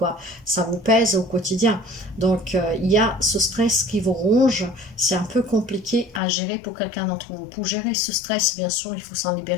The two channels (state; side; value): drops out; right; at 6.2 s